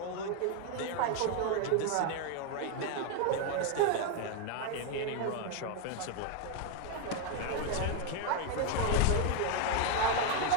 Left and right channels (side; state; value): both; different; correlation 0.01